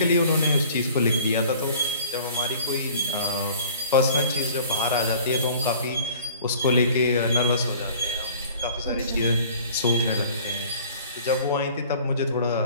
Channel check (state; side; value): inverted; both; correlation -0.48